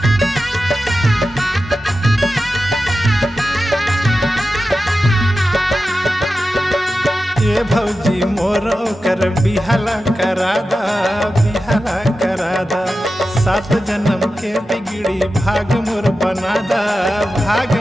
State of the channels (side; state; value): both; normal; correlation 0.92